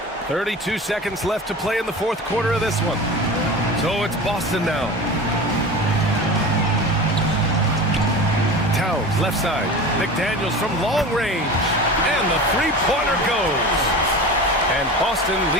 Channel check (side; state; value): both; normal; correlation 0.32